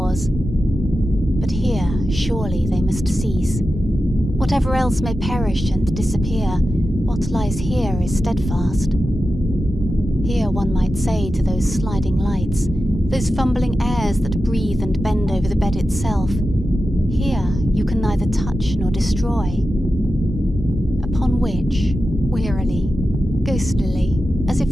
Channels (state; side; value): normal; both; correlation 0.91